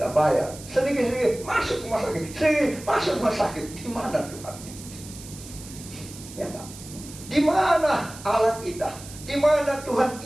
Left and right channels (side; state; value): right; noise; hiss, 15 dB below the sound